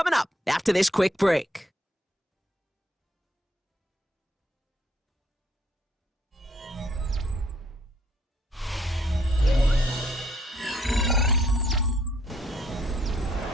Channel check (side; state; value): both; normal; correlation 0.68